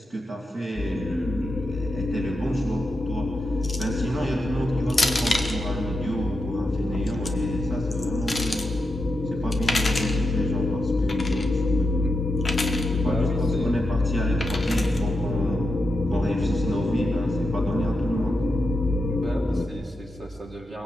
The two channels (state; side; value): normal; both; correlation 0.87